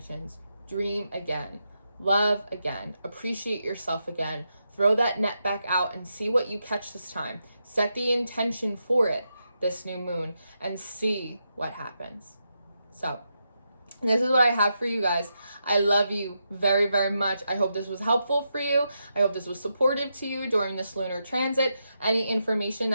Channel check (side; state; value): both; inverted; correlation -0.85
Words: dream again, love again, appreciate yourself again, throw that net back out and see what you catch this time. Set the intention for it this new moon and see what happens. So this is what I have for you guys. I love you very, very much. I hope this was helpful for you. I hope this was supportive to you during this lunar transit. Any information